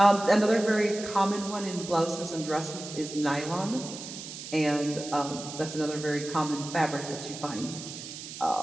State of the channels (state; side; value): noise; right; hiss, 11 dB below the sound